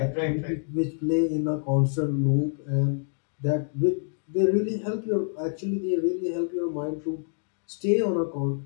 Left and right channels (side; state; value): right; silent; digital silence